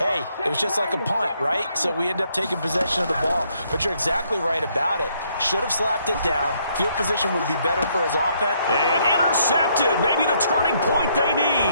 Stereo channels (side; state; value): both; inverted; correlation -0.71